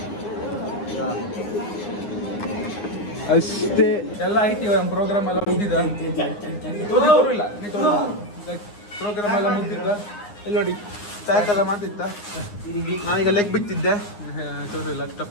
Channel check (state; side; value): late; right; 9.7 ms